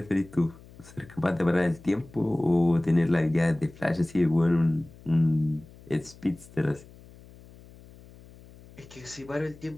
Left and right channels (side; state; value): left; noise; hum, 22 dB below the sound